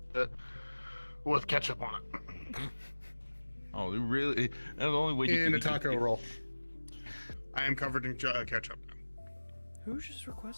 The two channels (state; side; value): inverted; both; correlation -1.00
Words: with ketchup on it. Oh, really? That's the only way you In can a taco roll. I am covered in ketchup now. Who just